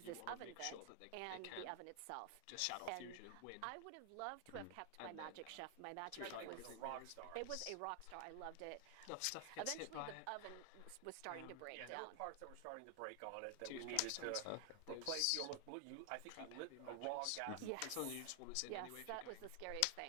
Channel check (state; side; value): different; both; correlation 0.00